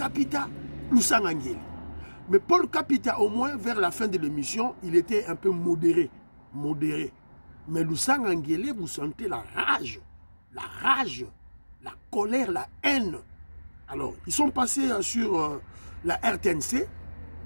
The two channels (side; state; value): both; inverted; correlation -1.00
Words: Lusanga Nguele. Mais Paul Kapita, au moins, vers la fin de l'émission, il était un peu modéré. Mais Lusanga Nguele, vous sentez la rage, la colère, la haine. Alors, ils sont passés sur la RTNC,